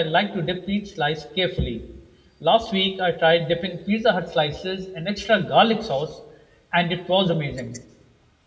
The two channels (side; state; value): both; identical; correlation 1.00